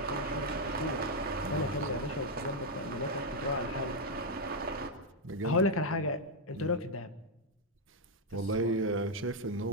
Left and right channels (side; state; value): both; normal; correlation 0.00